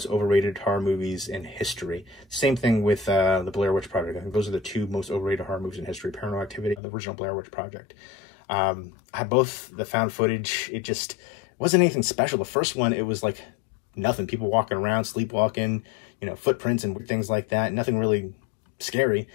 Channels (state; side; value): drops out; right; at 6.8 s